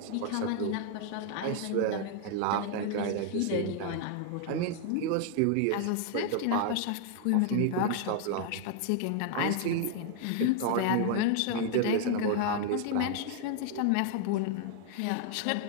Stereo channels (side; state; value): both; different; correlation 0.00